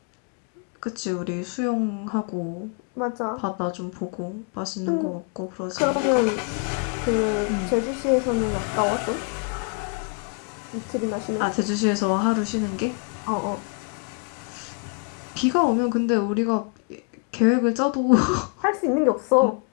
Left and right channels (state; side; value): quieter; right; 37.1 dB